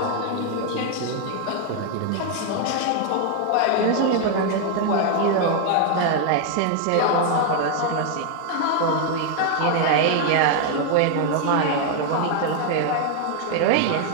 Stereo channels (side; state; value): both; different; correlation 0.00